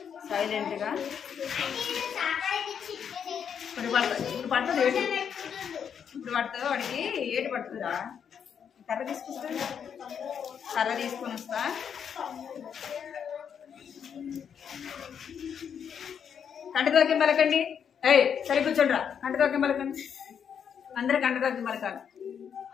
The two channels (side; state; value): right; quieter; 7.7 dB